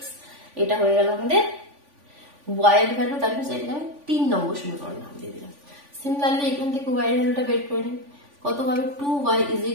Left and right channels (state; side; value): late; left; 3.5 ms